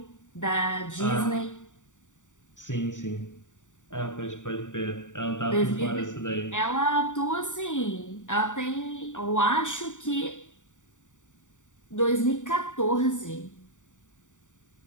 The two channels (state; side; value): late; right; 0.86 ms